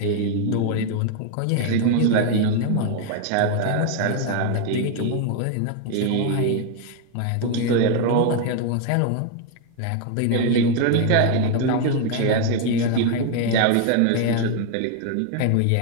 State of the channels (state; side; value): different; both; correlation 0.01